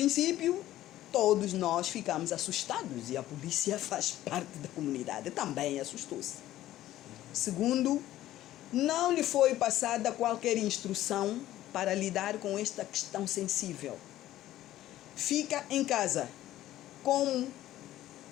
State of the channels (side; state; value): right; quieter; 14.1 dB